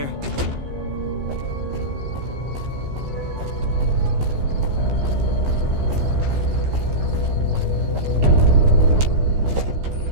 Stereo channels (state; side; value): late; left; 15 ms